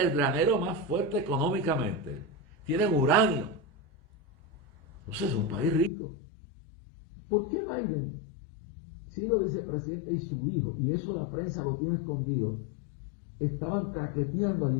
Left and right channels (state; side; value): drops out; right; at 5.9 s